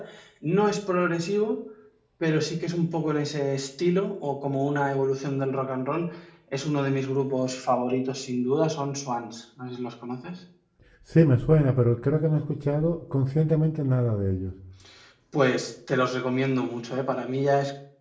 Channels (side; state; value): both; identical; correlation 1.00